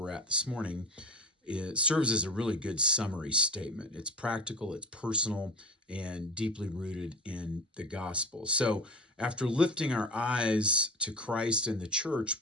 at this morning, it serves as a really good summary statement. It's practical, it's personal, and deeply rooted in the gospel. So after lifting our eyes to Christ and the church,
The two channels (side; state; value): both; normal; correlation 0.34